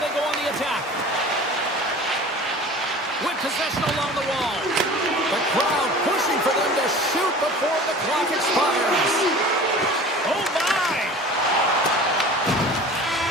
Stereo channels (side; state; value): both; normal; correlation 0.41